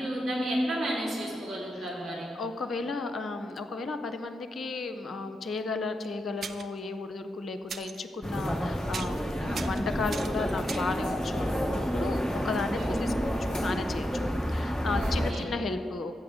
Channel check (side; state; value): both; normal; correlation 0.86